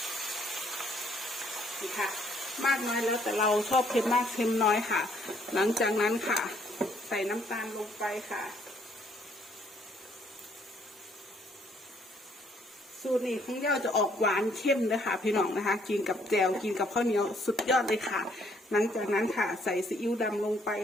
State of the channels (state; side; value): normal; both; correlation 0.66